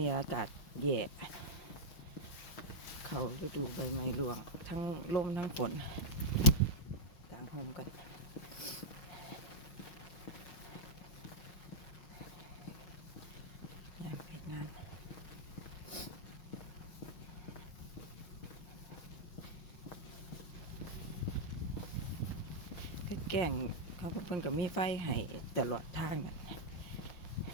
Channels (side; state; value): right; late; 5.9 ms